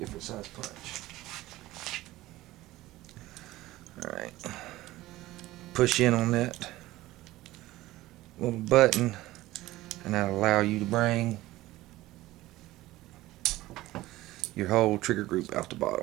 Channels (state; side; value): quieter; left; 17.2 dB